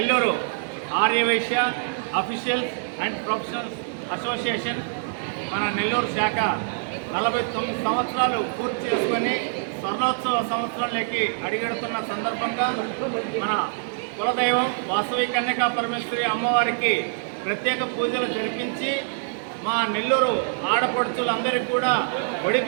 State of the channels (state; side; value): silent; left; digital silence